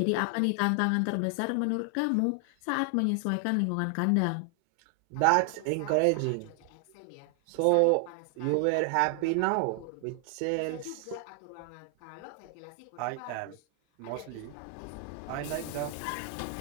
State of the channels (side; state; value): both; different; correlation 0.00